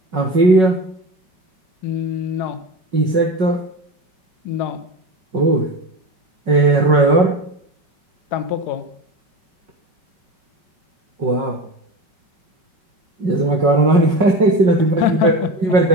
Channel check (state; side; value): late; left; 5.4 ms